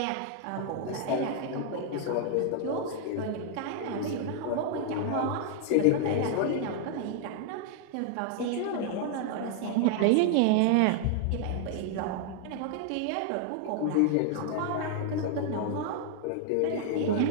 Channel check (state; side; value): different; both; correlation 0.00